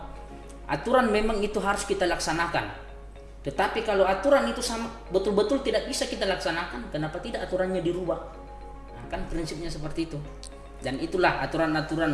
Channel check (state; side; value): identical; both; correlation 1.00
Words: aturan memang itu harus kita laksanakan. Tetapi kalau aturan itu sama betul-betul tidak bisa kita laksanakan, kenapa tidak aturannya dirubah? Kan prinsipnya seperti itu. Dan itulah